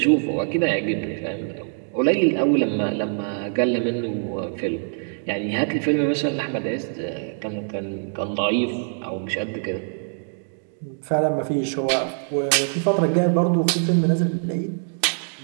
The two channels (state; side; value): silent; left; 63 dB below the other